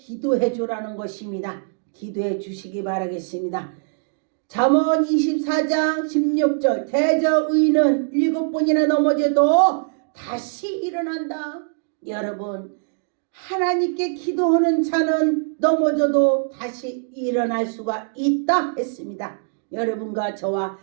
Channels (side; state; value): left; silent; digital silence